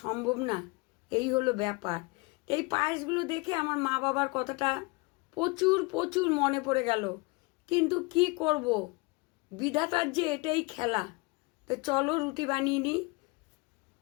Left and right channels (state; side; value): quieter; right; 26.6 dB